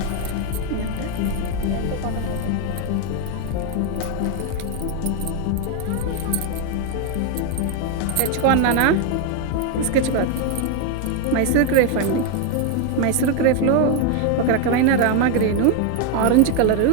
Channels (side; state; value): both; different; correlation 0.01